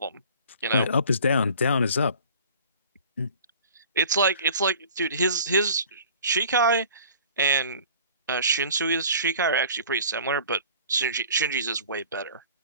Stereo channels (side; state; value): both; inverted; correlation -0.46